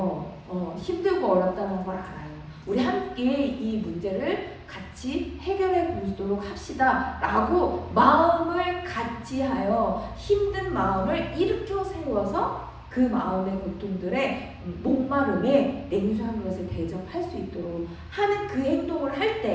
힘들고 어렵다는 걸 알아요. 우리 함께 이 문제를 같이 해결해 보도록 합시다 라고 마음을 같이 하여 힘든 마음을 일으켜 세워서 그 마음의 고통들의 목마름에 냉수한 것을 대접할 수 있도록 하는 그 행동을 할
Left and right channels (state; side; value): identical; both; correlation 1.00